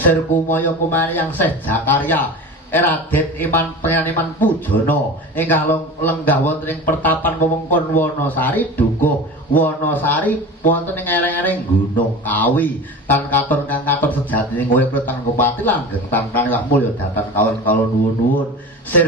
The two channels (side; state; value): both; normal; correlation 0.32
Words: kumaya kumane yang Syekh Zakaria Raden Iman Penganiman Pujana ingkang lenggah wonten ing Pertapan Wewengkon Wanasari Dukuh Wanasari wonten ing ereng-ereng Gunung Kawi tan katon kang katon sejatine urip tan pati langgeng tan wah mulya datan kawula nuwun.